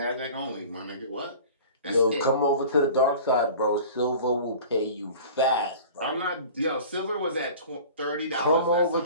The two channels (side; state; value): both; inverted; correlation -0.41